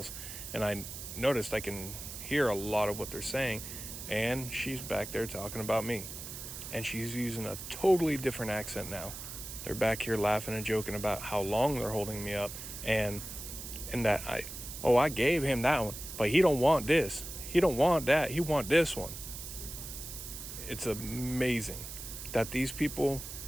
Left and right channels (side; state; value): right; noise; hiss, 9 dB below the sound